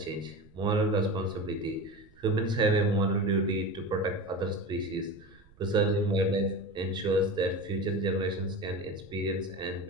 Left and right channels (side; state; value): right; noise; rumble, 27 dB below the sound